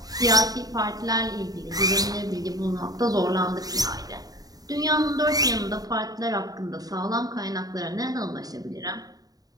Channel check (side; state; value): left; late; 0.18 ms